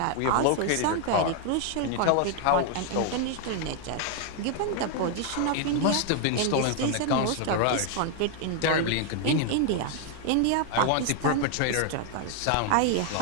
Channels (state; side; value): different; both; correlation 0.00